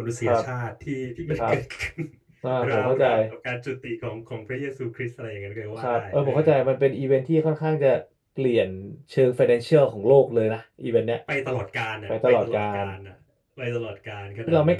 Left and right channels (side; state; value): both; identical; correlation 1.00